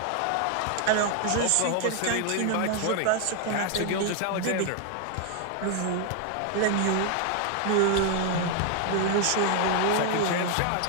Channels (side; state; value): both; different; correlation 0.00